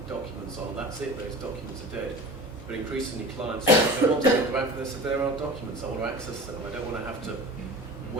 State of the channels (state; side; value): normal; both; correlation 0.36